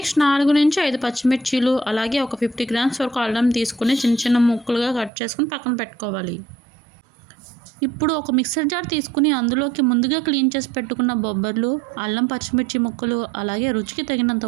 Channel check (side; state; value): left; drops out; at 5.1 s